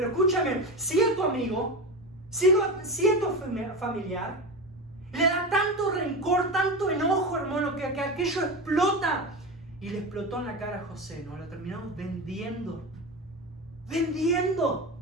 escúchame, si es tu amigo, si es tu familiar, le da tanto rencor, tanto enojo, hermano, que aquello explota. Y le explotó en la cara a José, ¿no? Lo terminamos vendiendo.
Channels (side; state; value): both; normal; correlation 0.22